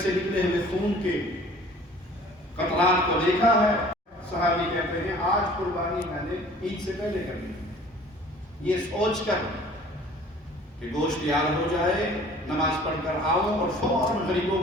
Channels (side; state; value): both; normal; correlation 0.49